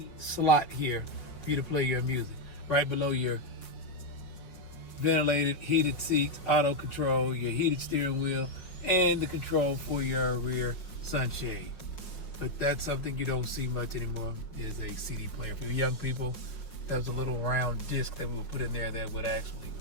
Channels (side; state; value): right; late; 5.5 ms